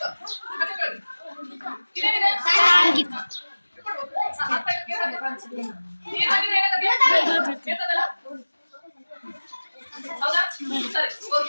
ಇದೇನಿದೆ ನೀರು ಹಾಕಿದ್ರೆ ಏನಾಗುತ್ತೆ ಬೀಳ್ತದಲ್ಲ ಹೌದಾ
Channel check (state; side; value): inverted; both; correlation -1.00